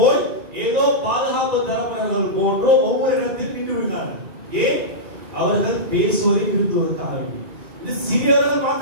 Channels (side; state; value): left; late; 2.4 ms